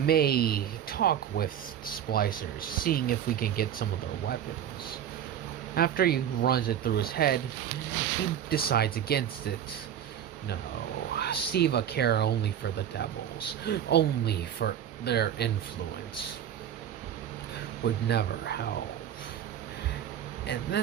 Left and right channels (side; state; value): left; quieter; 9.8 dB